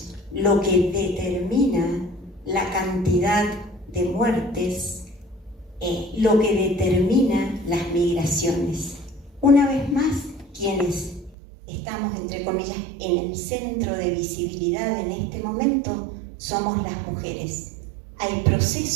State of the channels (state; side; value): drops out; left; at 11.4 s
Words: lo que determina la cantidad de muertes, lo que determina las migraciones. Una vez más, quienes estamos, entre comillas, en el centro de visibilidad en este momento somos las mujeres. Hay